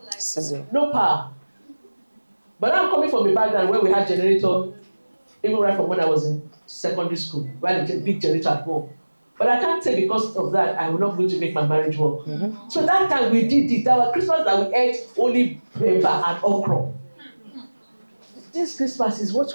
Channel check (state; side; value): inverted; both; correlation -1.00